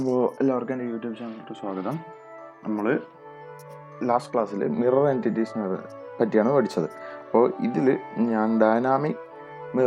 എല്ലാവർക്കും എൻ്റെ യൂട്യൂബ് ചാനലിലേക്ക് സ്വാഗതം. നമ്മൾ ലാസ്റ്റ് ക്ലാസ്സിൽ മിറർ എൻറ്റിറ്റീസിനെ പറ്റിയാണ് പഠിച്ചത്. അപ്പോൾ ഇതിൽ ഞാൻ dynamic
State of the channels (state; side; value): identical; both; correlation 1.00